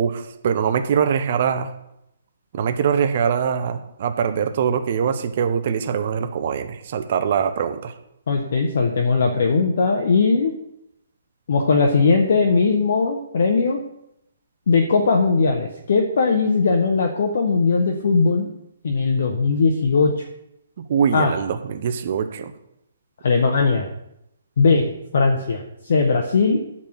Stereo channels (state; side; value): inverted; both; correlation -0.71